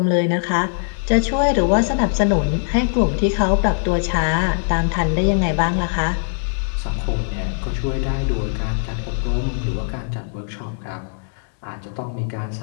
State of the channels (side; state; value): right; silent; 65 dB below the other